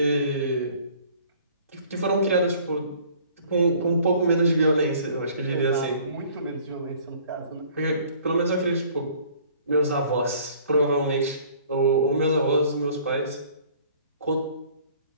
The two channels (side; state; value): both; inverted; correlation -0.54